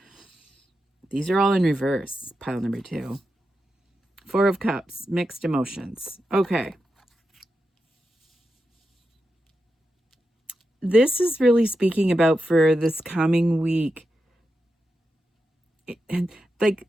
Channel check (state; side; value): normal; both; correlation 0.88